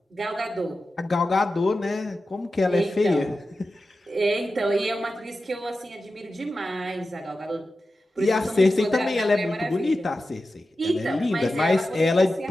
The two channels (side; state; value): both; normal; correlation 0.93